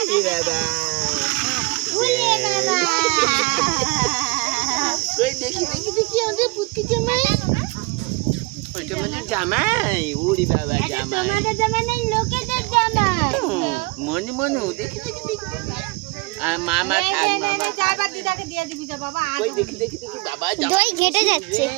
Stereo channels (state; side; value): quieter; left; 25.3 dB